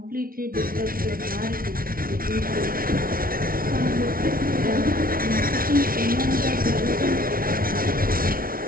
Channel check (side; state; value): left; late; 0.43 ms